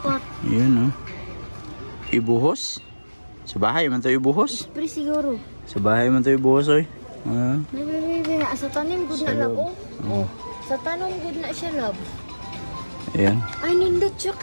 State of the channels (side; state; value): both; inverted; correlation -1.00